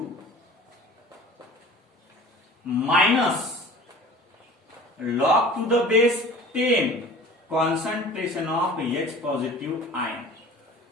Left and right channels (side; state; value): both; normal; correlation 0.43